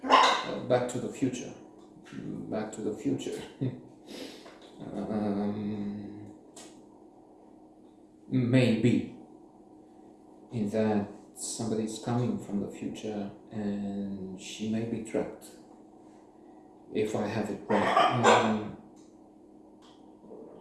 Back to the Future. Back to the Future. Maybe in that somebody's coming from the future and she may be trapped. If I have it right.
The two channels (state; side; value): identical; both; correlation 1.00